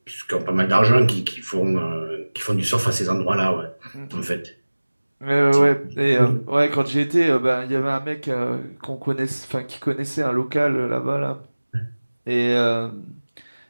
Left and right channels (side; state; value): both; inverted; correlation -1.00